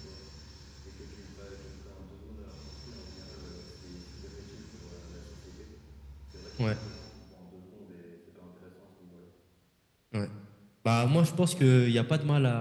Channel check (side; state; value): both; identical; correlation 1.00